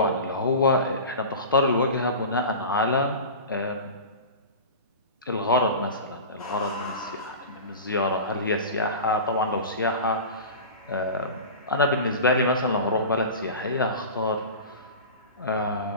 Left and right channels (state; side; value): inverted; both; correlation -0.32